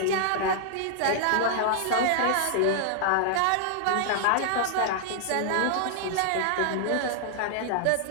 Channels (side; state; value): both; different; correlation -0.01